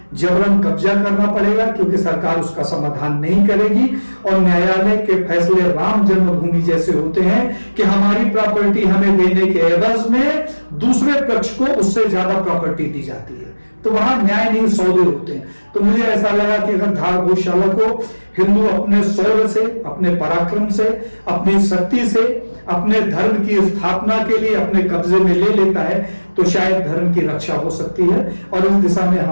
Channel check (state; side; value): inverted; both; correlation -1.00